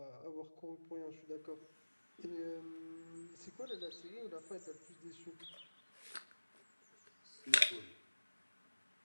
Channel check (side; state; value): both; inverted; correlation -1.00